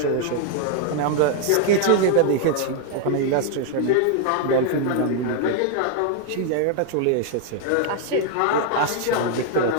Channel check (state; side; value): different; both; correlation 0.00